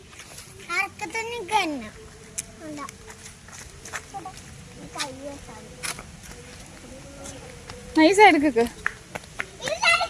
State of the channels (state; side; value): identical; both; correlation 1.00